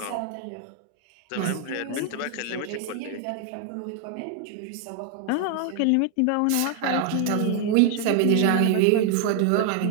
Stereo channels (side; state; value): both; different; correlation 0.00